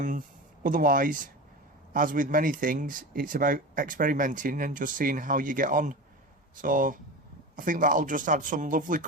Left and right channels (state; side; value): normal; both; correlation 0.28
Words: as with many things, it's about experimenting and just seeing how you get on. So I think that'll just add some lovely